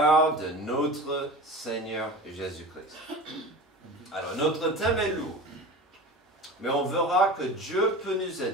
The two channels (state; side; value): normal; both; correlation 0.33